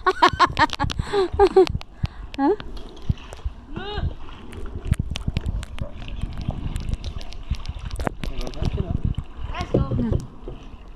Huh? Let's go.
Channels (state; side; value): identical; both; correlation 1.00